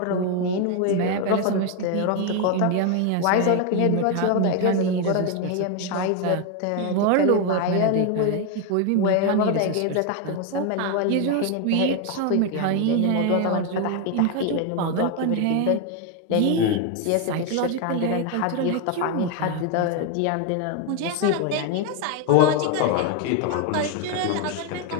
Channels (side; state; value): both; different; correlation 0.01